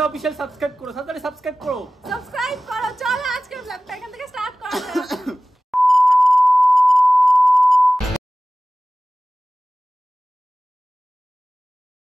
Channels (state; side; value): normal; both; correlation 0.97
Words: অফিশিয়াল সাবস্ক্রাইব করো, সাবস্ক্রাইব করো। চলো আজকে ব্লগটা এখান থেকে স্টার্ট করা যাক।